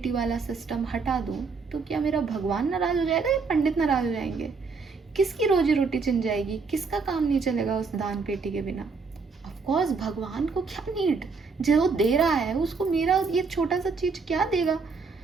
वाला सिस्टम हटा दूं तो क्या मेरा भगवान नाराज हो जाएगा या पंडित नाराज हो जाएंगे? किसकी रोजी रोटी छिन जाएगी? किसका काम नहीं चलेगा उस दान पेटी के बिना? ऑफ कोर्स भगवान को क्या नीड, जो दे रहा है उसको मेरा ये छोटा सा चीज क्या देगा?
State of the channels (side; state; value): left; quieter; 4.7 dB